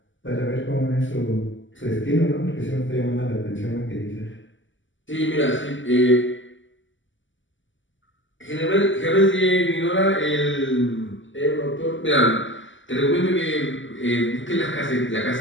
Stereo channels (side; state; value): right; late; 0.55 ms